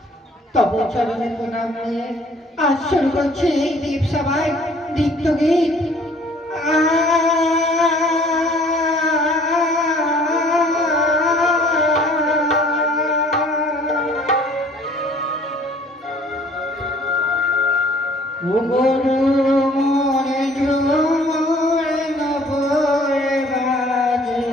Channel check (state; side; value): normal; both; correlation 0.55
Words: তব চরণে প্রণাম নিয়ে আজ শুরু করছে এই দীপ সভায় দীপ্ত গীত। ও গরু মোরে ঝুমরে নবরে বাজে,